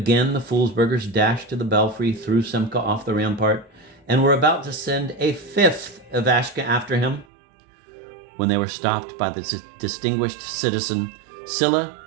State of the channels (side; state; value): left; drops out; at 7.2 s